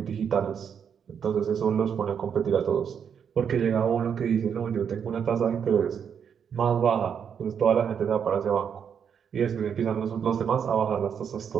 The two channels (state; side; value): quieter; left; 7.5 dB